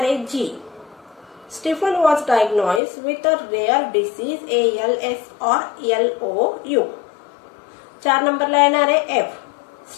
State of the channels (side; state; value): right; drops out; at 2.8 s